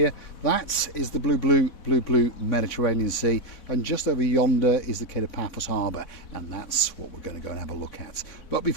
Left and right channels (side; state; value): right; late; 4.1 ms